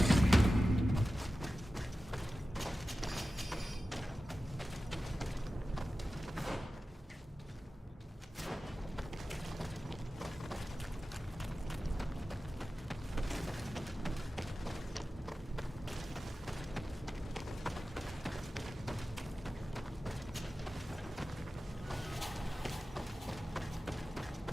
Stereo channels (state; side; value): normal; both; correlation 0.94